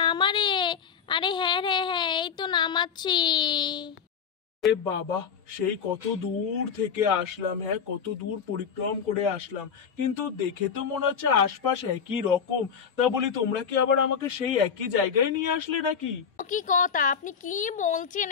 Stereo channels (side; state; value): right; quieter; 6.8 dB